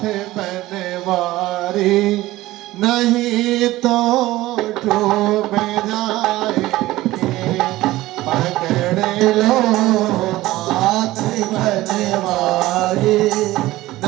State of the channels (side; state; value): left; quieter; 17.2 dB